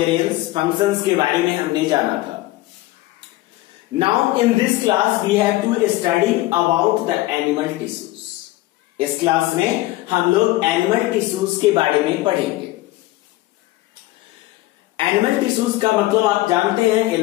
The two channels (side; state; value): right; quieter; 17.8 dB